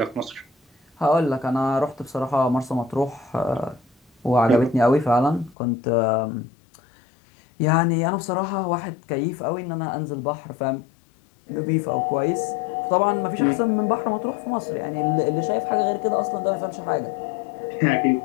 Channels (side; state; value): right; drops out; at 5.6 s